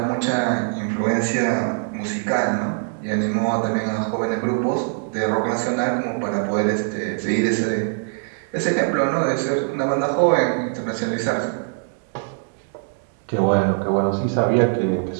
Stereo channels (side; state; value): left; silent; digital silence